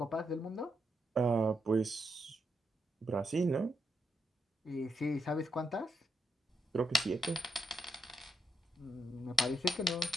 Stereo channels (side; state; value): both; normal; correlation 0.81